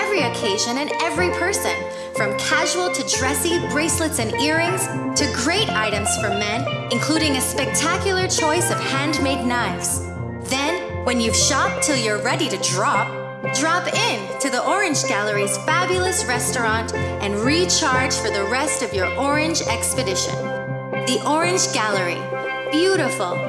occasion and every person, from casual to dressy bracelets and earrings to great items for men, including a spectacular choice of handmade knives. Then, when you've shopped till you're ready to drop in to the Orange Gallery's fabulous restaurant and recharge for the rest of your orange expedition. The Orange Gallery. Beautiful,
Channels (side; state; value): both; identical; correlation 1.00